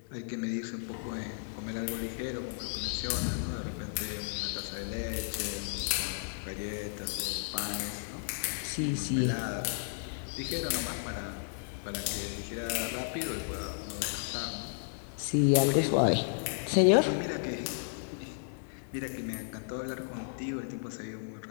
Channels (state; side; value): silent; right; 55 dB below the other